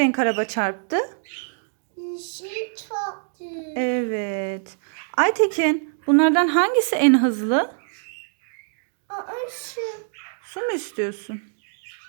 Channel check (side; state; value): left; silent; digital silence